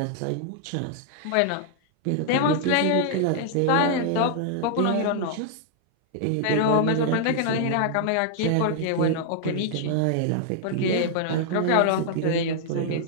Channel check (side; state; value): both; different; correlation -0.01